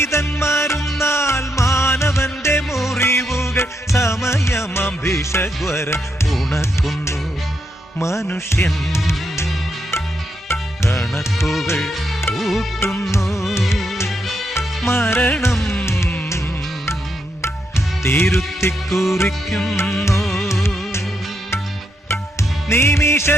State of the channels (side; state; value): both; normal; correlation 0.80